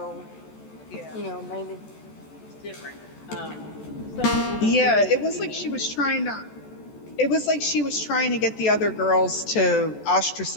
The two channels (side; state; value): right; late; 14 ms